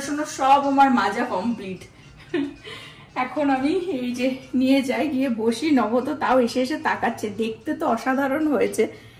সব আমার মাজা কমপ্লিট। এখন আমি এই যে নিয়ে যাই, গিয়ে বসি। নব তো তাও এসে এসে তাকাচ্ছে, দেখতে তো অসাধারণ হয়েছে,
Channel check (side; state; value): both; identical; correlation 1.00